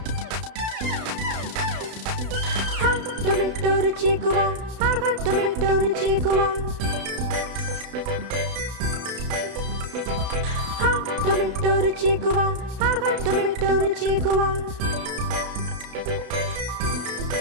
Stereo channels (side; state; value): left; late; 32 ms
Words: టొరటోరు చీకువా, ఆహా టొరటోరు చీకువా. టొరటోరు చీకువా, ఆహా టొరటోరు చీకువా.